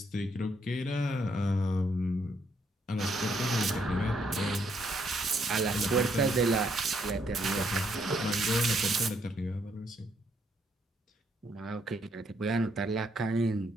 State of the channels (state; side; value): normal; both; correlation 0.73